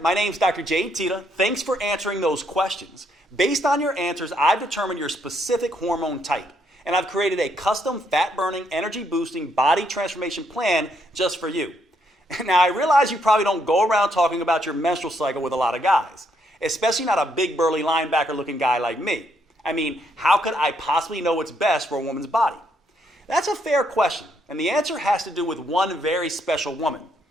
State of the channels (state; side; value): normal; both; correlation 0.74